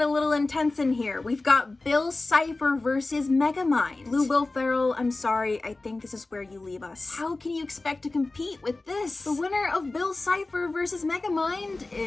a little intense in here. We've got Bill Cipher versus Megamind. Blue Will Ferrell, I'm sorry, I think this is where you leave us. How can you expect to compete with this? The winner of Bill Cipher versus Megamind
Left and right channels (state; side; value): quieter; right; 3.2 dB